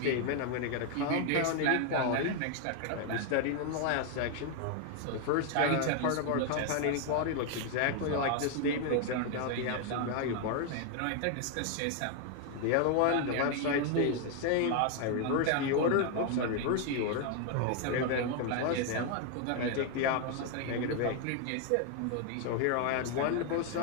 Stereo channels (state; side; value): different; both; correlation 0.01